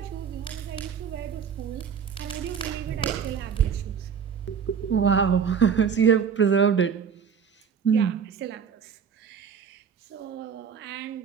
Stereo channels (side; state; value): left; quieter; 7.0 dB